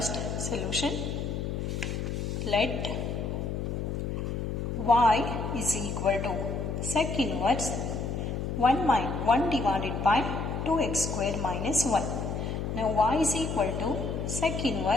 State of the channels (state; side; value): noise; left; hum, 3 dB below the sound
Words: solution. Let y is equal to sec inverse 1 divided by 2x square minus 1. Now y is equal to sec